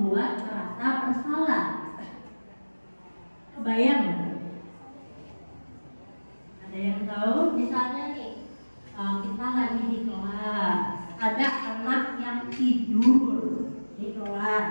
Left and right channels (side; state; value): both; inverted; correlation -1.00